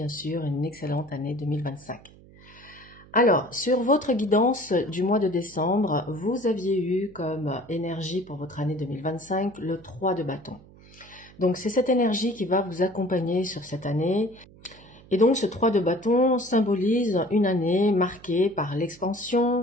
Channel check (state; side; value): noise; right; hum, 23 dB below the sound